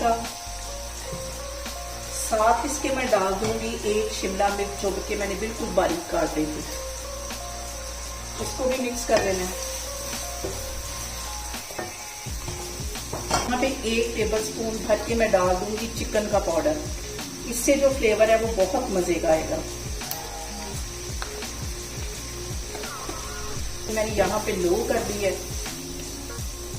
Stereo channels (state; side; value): identical; both; correlation 1.00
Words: का। साथ इसके मैं डाल दूंगी 1 शिमला मिर्च जो कि मैंने बिल्कुल बारीक काट दी थी। इसको भी मिक्स कर लेना है। यहाँ पे 1 टेबलस्पून भर के मैं डाल दूंगी चिकन का पाउडर। इससे जो फ्लेवर है वो बहुत मजे का आएगा। तो मैंने यहाँ पे लो कर दी है।